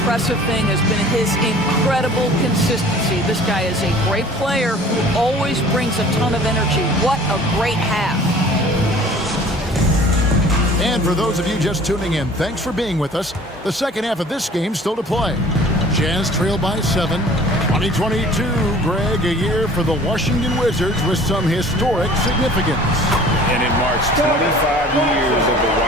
thing has been his incredible consistency. This guy is a great player who always brings a ton of energy. What a great half. And for those of you just tuning in, thanks for being with us. The second half of this game still to play. Jazz trail by 7. 2022, Greg, a year for the Washington Wizards with some historic significance. And it marks 25 years of the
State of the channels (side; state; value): both; normal; correlation 0.48